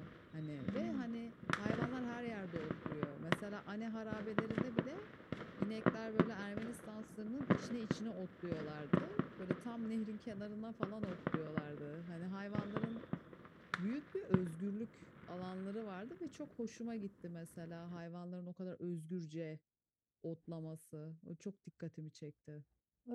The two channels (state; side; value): identical; both; correlation 1.00